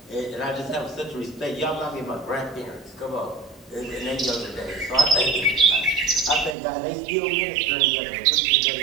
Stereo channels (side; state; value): left; drops out; at 6.6 s